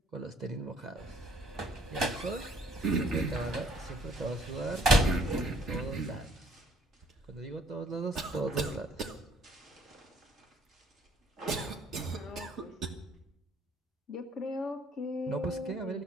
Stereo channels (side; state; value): both; normal; correlation 0.62